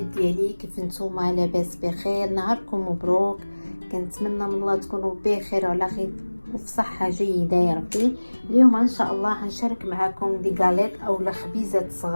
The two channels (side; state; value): both; inverted; correlation -1.00